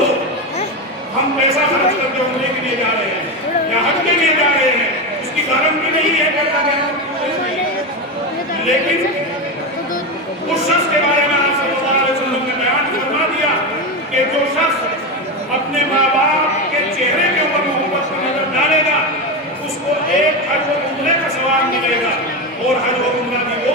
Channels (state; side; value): normal; both; correlation 0.15